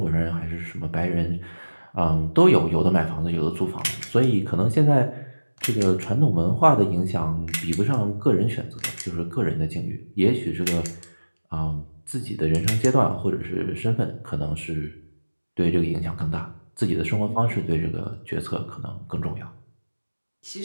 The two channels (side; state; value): both; inverted; correlation -1.00